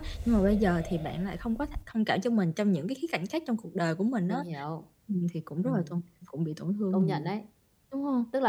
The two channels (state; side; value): identical; both; correlation 1.00